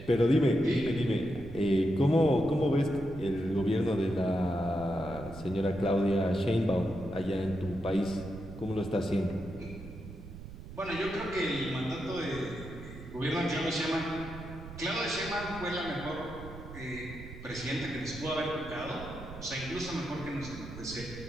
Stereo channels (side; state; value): right; noise; rumble, 13 dB below the sound